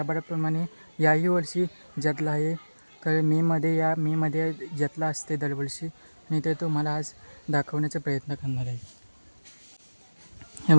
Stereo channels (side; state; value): both; inverted; correlation -1.00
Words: याही वर्षी जत्रा आहे. तर मेमध्ये जत्रा असते दरवर्षी आणि ते तुम्हाला आज दाखवण्याचा प्रयत्न करणार आहे. हे